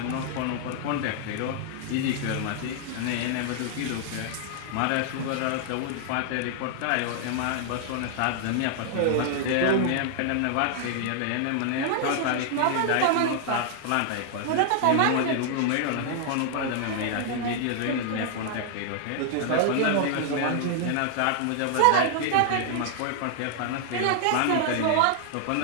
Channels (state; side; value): different; both; correlation -0.01